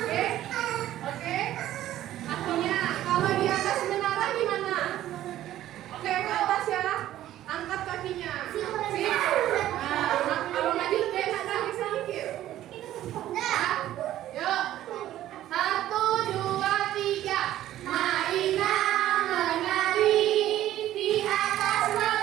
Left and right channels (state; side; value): quieter; left; 13.3 dB